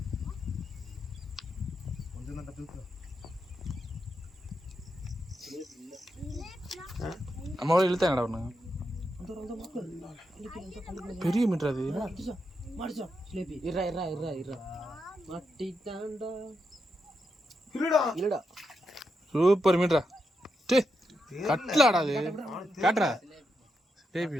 கொஞ்சம் தான் தூக்கு அம்மாவோட இழுத்தா என்னடா ஒன்று பெரிய மீட்டர் அது மாடிச்சோம் ஸ்லேபி இருடா இருடா இருடா இருடா மாட்டிட்டான்டா இருடா இல்லடா சூப்பர் மீட்டரா டே கட்டலாடா அது காட்டுறா பேபி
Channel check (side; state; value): both; normal; correlation 0.84